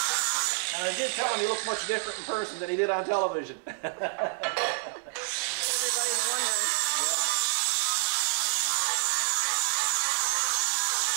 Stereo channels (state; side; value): silent; left; 59 dB below the other